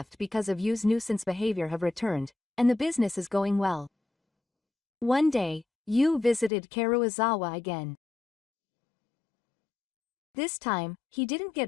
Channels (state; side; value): drops out; right; at 6.5 s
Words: because of Yu's nuisance behavior have returned, and the business is going well. One day, Yu visited Karuizawa again. This time, he didn't